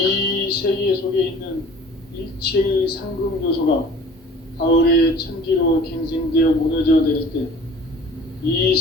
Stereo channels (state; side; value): normal; both; correlation 0.47